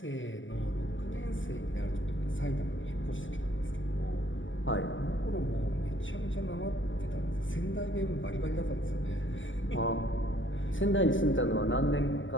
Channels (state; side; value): late; right; 0.56 ms